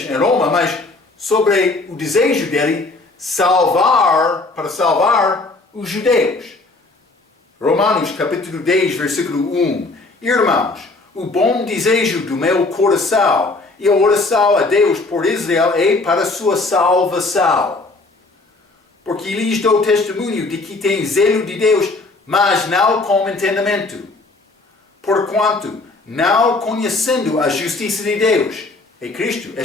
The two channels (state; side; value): quieter; right; 3.3 dB